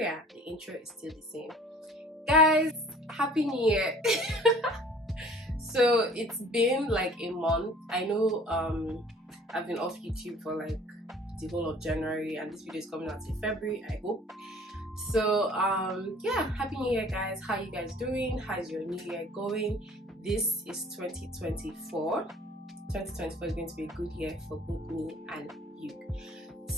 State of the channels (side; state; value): both; normal; correlation 0.50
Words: The intro is still the same. Guys, Happy New Year! So it's been like a month. I know I've been off YouTube for like the whole of January and this video is coming out in February, I hope. So yeah, Happy New Year guys. How you guys doing? How's your new year going? This is 2024. 2024 is going to be a good year for both me and you.